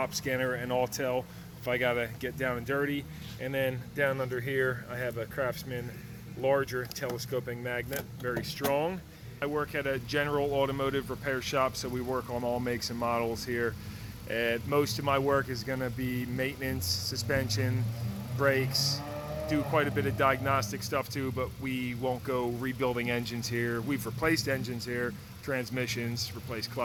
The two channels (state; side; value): identical; both; correlation 1.00